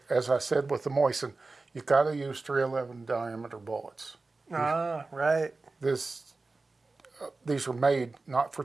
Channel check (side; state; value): left; quieter; 3.6 dB